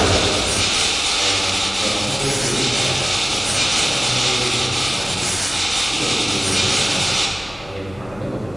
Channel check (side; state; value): left; noise; hum, 21 dB below the sound